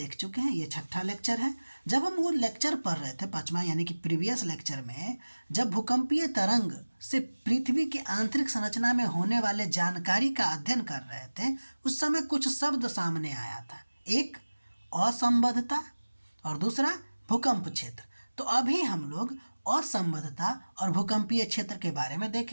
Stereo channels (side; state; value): both; inverted; correlation -1.00